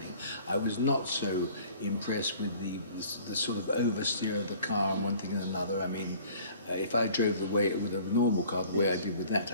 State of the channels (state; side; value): inverted; both; correlation -0.50